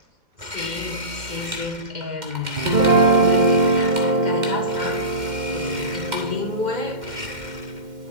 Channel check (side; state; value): left; late; 2.1 ms